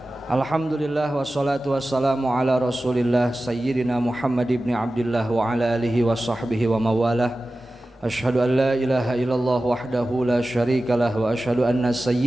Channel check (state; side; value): normal; both; correlation 0.95